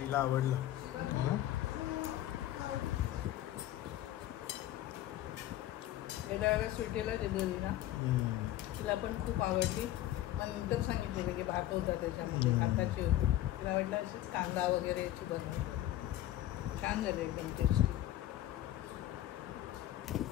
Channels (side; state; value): right; quieter; 13.9 dB